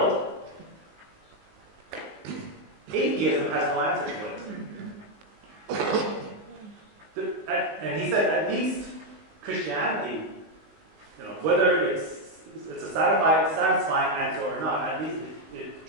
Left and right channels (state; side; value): late; left; 19 ms